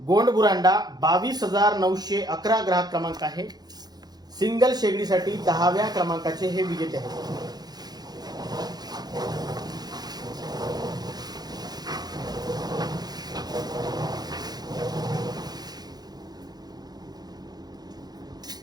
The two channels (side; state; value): left; late; 0.19 ms